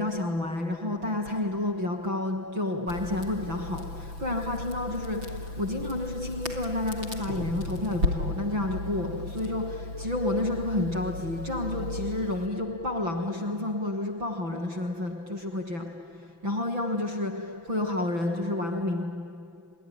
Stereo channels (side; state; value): left; late; 6.0 ms